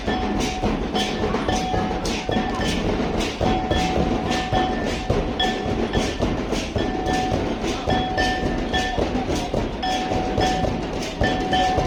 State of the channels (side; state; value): both; identical; correlation 1.00